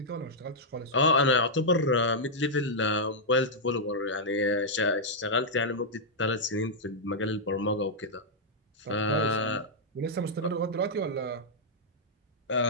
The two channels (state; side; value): normal; both; correlation -0.06